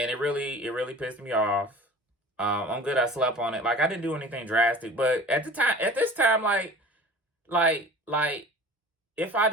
it really pissed me off. I'm good I slept on it. Like, I didn't do anything drastic, but at this time, like if I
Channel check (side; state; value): both; normal; correlation 0.42